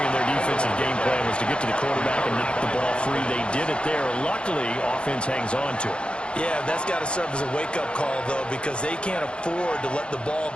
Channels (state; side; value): late; right; 0.056 ms